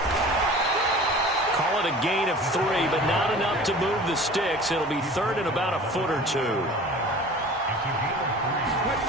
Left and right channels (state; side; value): normal; both; correlation 0.42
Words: Call it a gain of 3, but not enough to move the sticks. It'll be 3rd and about a foot or 2.